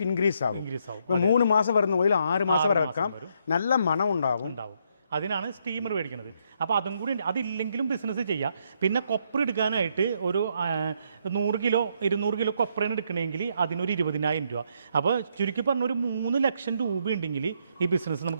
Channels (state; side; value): inverted; both; correlation -0.74